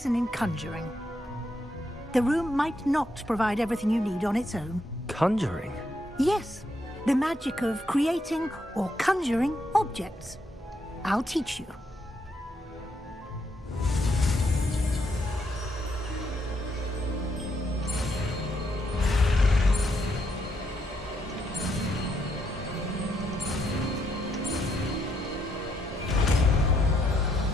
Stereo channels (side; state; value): both; normal; correlation 0.77